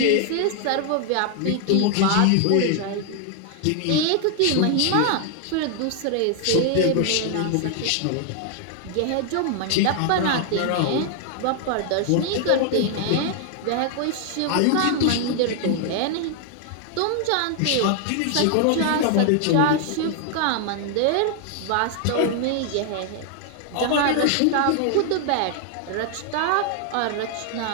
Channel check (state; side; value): different; both; correlation 0.00